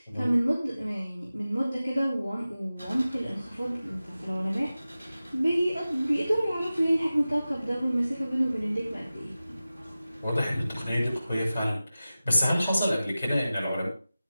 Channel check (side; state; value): both; inverted; correlation -0.95